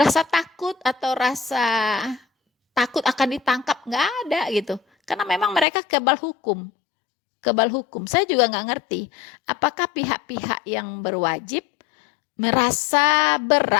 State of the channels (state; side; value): drops out; right; at 5.7 s